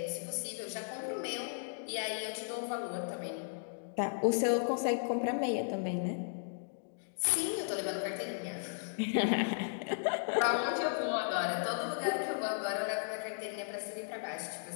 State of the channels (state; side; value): silent; right; digital silence